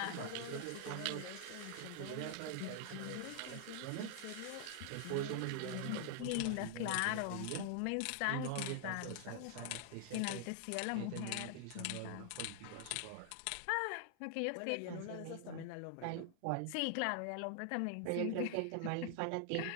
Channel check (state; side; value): different; both; correlation -0.01